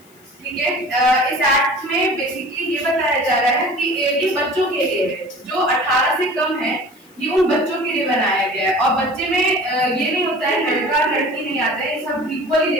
ठीक है। इस एक्ट में बेसिकली ये बताया जा रहा है कि ये बच्चों के लिए है, जो 18 से कम है, ये उन बच्चों के लिए बनाया गया है। और बच्चे में ये नहीं होता है लड़का लड़की नहीं आता है, ये सब इक्वली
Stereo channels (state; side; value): noise; left; hiss, 29 dB below the sound